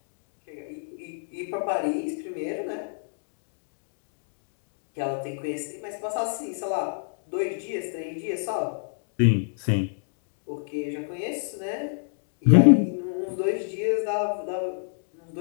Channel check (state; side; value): silent; right; digital silence